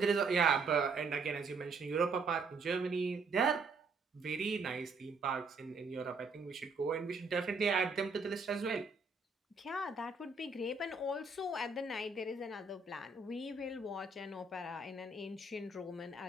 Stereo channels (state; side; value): quieter; left; 3.9 dB